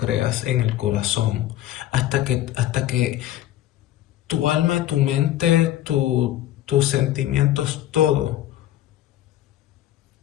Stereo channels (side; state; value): right; quieter; 13.6 dB